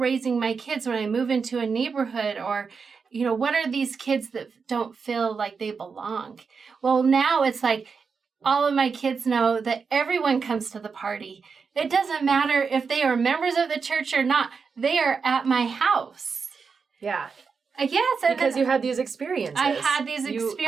my kids when I move into a neighborhood, or, what are these kids that don't feel like they belong? Well, now it's like all of my kids know that everyone comes to the party. It doesn't matter if they are members of the church or not. They are at my house. Yeah. Yes. Because you had these experiences. I had these experiences. You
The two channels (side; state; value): left; quieter; 5.4 dB